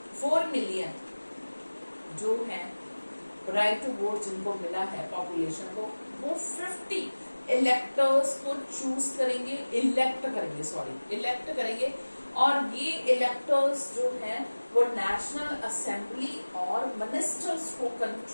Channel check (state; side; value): inverted; both; correlation -1.00